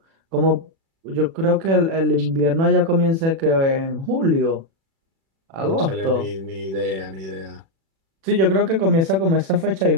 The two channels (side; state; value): left; late; 36 ms